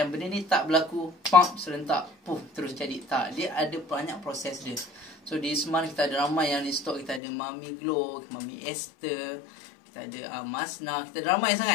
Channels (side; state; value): right; drops out; at 7.2 s